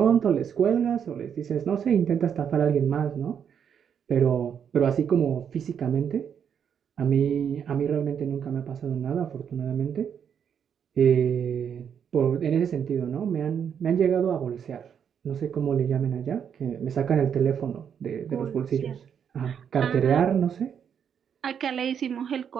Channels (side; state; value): left; quieter; 7.9 dB